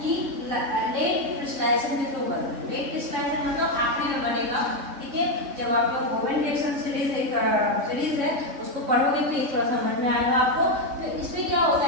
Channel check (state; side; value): late; left; 3.6 ms